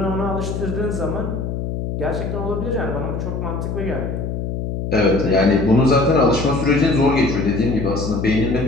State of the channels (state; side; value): noise; left; hum, 4 dB below the sound